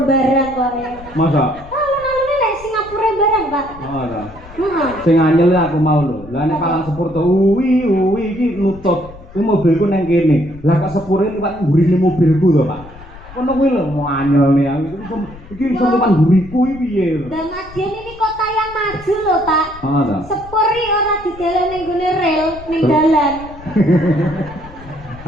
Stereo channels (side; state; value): left; noise; rumble, 19 dB below the sound